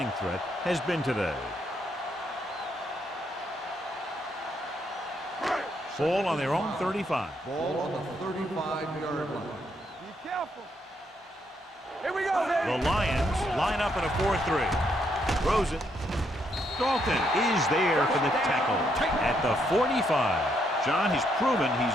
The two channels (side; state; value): both; normal; correlation 0.75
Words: threat has been today. Ball on their own 35. Ball on the 35-yard line. Be careful. Here we go, baby. The Lions line up in a 4-3. Throws it. Dalton is there for the tackle at the 45. John, he's proven